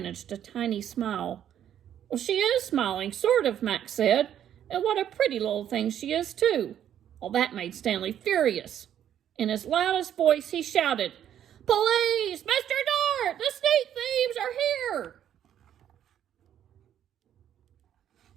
a tiny smile. "Well, she is smiling, sort of," Max said. "And what a pretty little thing she is, too." Well, that made Stanley furious. In his loudest voice, he shouted, "Police! Mr. Dart! The sneak thieves are here!"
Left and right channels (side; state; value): left; quieter; 10.2 dB